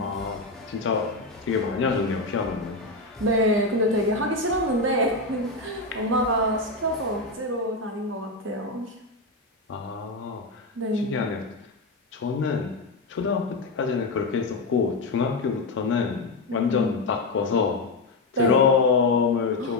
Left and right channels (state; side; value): quieter; right; 3.1 dB